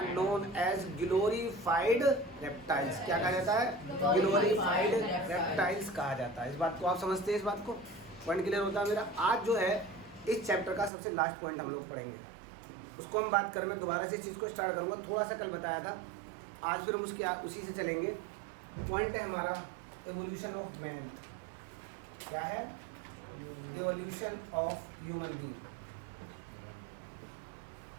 known as glorified reptiles. क्या कहा जाता है? ग्लोरीफाइड रेप्टाइल्स कहा जाता है. इस बात को आप समझते हैं? इस बात को पॉइंट क्लियर होता है मेरा? आज जो है इस चैप्टर का सबसे लास्ट पॉइंट हम लोग पढ़ेंगे, उसको हम बात करें. मैं दोबारा से इस चीज़ को स्टार्ट करूँगा. थोड़ा सा कल बताया था, आज फिर हम उसी से चलेंगे. पॉइंट है हमारा एवोल्यूशन ऑफ मैन. क्या है? Evolution of human being.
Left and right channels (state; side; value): drops out; left; at 10.9 s